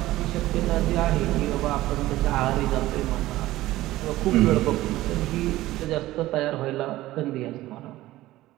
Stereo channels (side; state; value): left; quieter; 16.5 dB